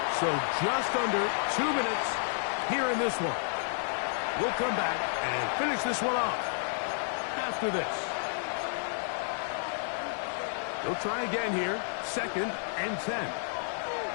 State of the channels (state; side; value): silent; right; digital silence